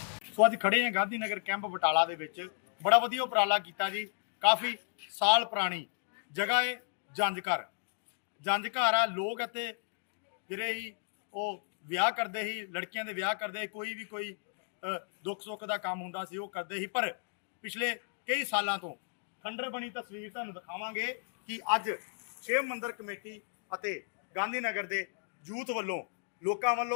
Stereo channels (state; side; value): silent; right; digital silence